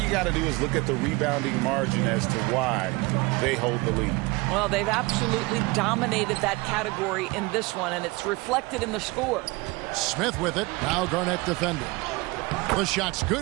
got to do is look at the rebounding margin as to why they hold the lead. Well, they've absolutely dominated that category in this one, and it's reflected in the score. Smith with it. Now Garnett defending. The shot's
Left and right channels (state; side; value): quieter; left; 24.2 dB